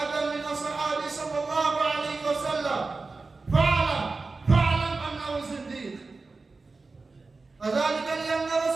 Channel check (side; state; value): left; quieter; 3.9 dB